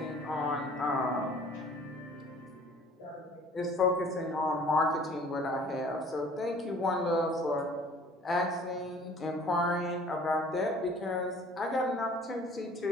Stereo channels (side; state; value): both; normal; correlation 0.51